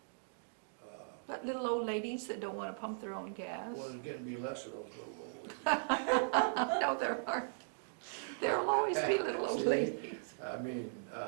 But little old ladies that don't want to pump their own gas? Well, there's getting to be less of those little old ladies. No, there aren't. There'll always be little old See? ladies. I mean,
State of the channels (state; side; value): silent; left; digital silence